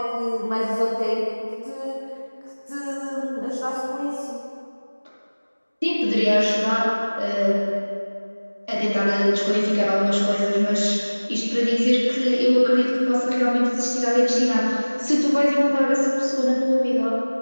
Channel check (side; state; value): both; inverted; correlation -1.00